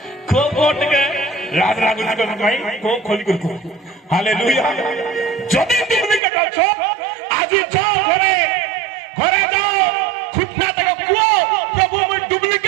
को कोट के राज रागुल को भाई को खोली को हालेलुया যদি ডুপ্লিকেট আছো আজি যাও ঘরে ঘরে যাও খুঁটনা তো কুও প্রভু মই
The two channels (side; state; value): left; drops out; at 6.2 s